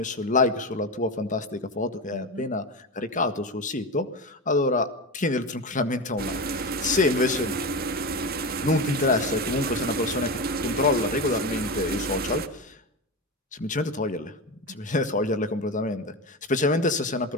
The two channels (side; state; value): both; normal; correlation 0.20